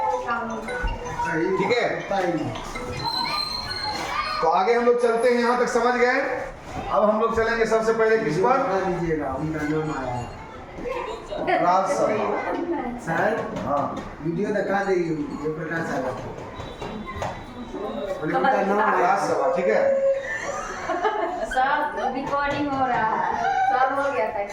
ठीक है, तो आगे हम लोग चलते हैं। यहाँ तक समझ गए? अब हम लोग चलेंगे सबसे पहले किस पर? राज्यसभा। सर हाँ, वीडियो दिखा देगी जयप्रकाश यादव उनका नाम राज्यसभा। ठीक है, सब रिकॉर्डिंग हो रहा है, सब हो गया था।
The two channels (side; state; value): both; identical; correlation 1.00